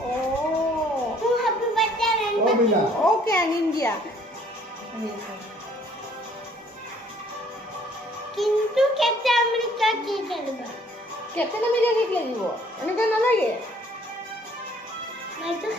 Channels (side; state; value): both; normal; correlation 0.60